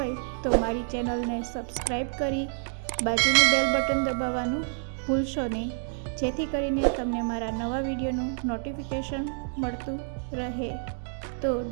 તો મારી ચેનલને સબસ્ક્રાઈબ કરી બાજુનું બેલ બટન દબાવવાનું ભૂલશો નહીં, જેથી કરીને તમને મારા નવા વિડીયોનું નોટિફિકેશન મળતું રહે। તો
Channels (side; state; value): left; silent; digital silence